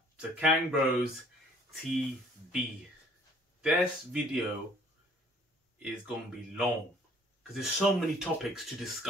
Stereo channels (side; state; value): both; normal; correlation 0.57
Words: to KangBrosTV. This video is going to be long because there's so many topics to